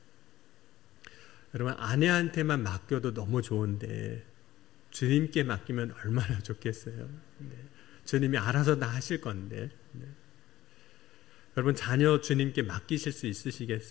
여러분 아내한테만 맡겨도 너무 좋은데 주님께 맡기면 얼마나 좋겠어요. 네. 주님이 알아서 다 하실 건데. 네. 여러분 자녀 주님께 맡기실 수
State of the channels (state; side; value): quieter; right; 15.2 dB